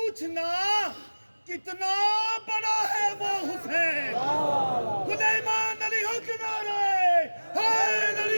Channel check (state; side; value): inverted; both; correlation -1.00